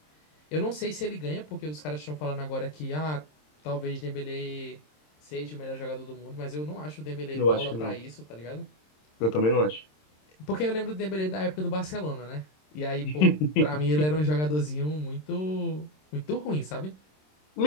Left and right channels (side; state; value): right; late; 26 ms